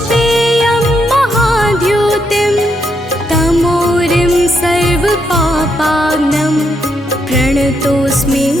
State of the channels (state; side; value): normal; both; correlation 0.78